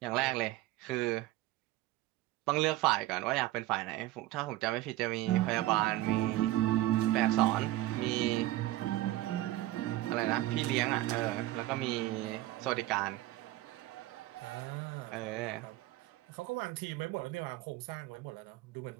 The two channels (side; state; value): left; quieter; 16.2 dB